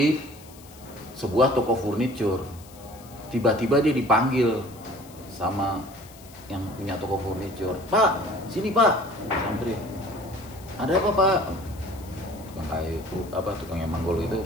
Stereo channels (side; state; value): left; noise; hiss, 22 dB below the sound